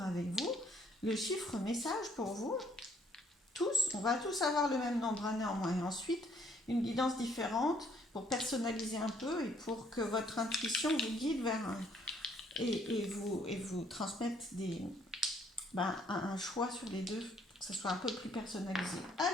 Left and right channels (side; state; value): both; normal; correlation 0.65